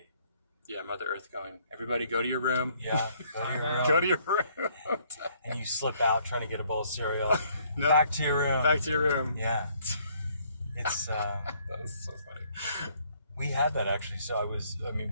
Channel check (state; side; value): inverted; both; correlation -0.65